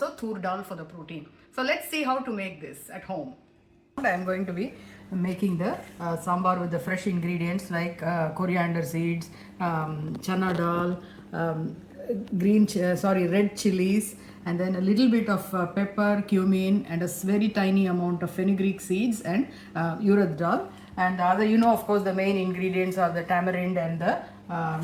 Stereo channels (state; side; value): identical; both; correlation 1.00